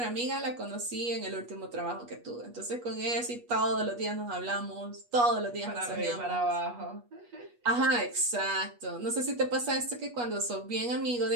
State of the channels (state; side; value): late; left; 8.3 ms